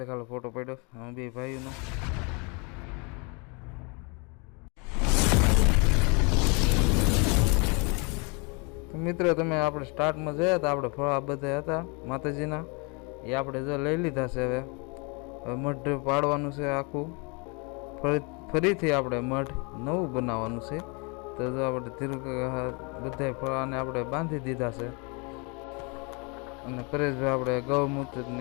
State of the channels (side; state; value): right; quieter; 32.0 dB